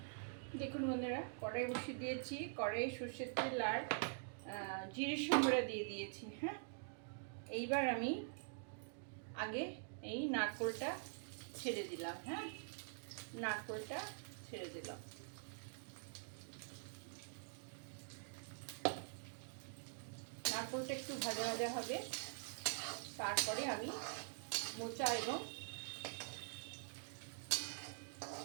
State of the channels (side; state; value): left; silent; digital silence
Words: দেখুন বন্ধুরা, কড়াই বসিয়ে দিয়েছি। কড়াই সর্ষের তেল আর জিরের সম্বরা দিয়ে দিয়েছি। হ্যাঁ, এইবার আমি আগে এই নারকোলটা ছেড়ে দিলাম। হ্যাঁ, নারকোলটা ছেড়ে দিলাম। নারকোলটা একটু ভাজা ভাজা হবে, তারপরে আমি মোচা এবং